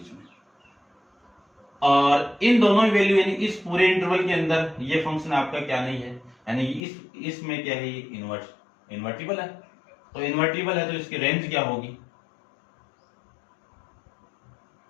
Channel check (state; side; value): drops out; right; at 6.8 s